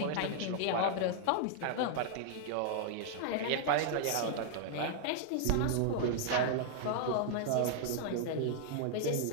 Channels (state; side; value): different; both; correlation -0.01